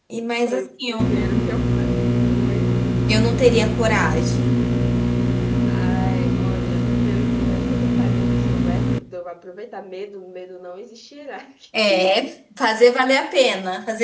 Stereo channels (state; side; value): identical; both; correlation 1.00